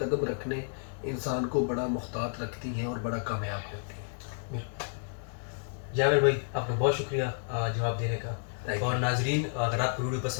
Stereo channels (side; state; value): right; silent; digital silence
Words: رکھنے انسان کو بڑا محتاط رکھتی ہیں اور بڑا کامیاب کرتی ہیں. جاوید بھائی آپ کا بہت شکریہ جواب دینے کا. Thank you. اور ناظرین اگر آپ کو ویڈیو